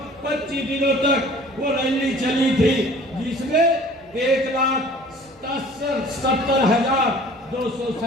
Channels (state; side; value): normal; both; correlation 0.49